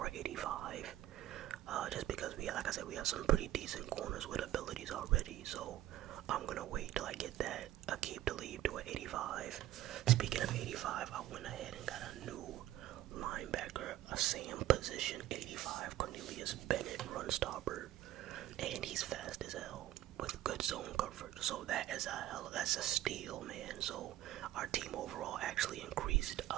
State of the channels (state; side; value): quieter; left; 14.2 dB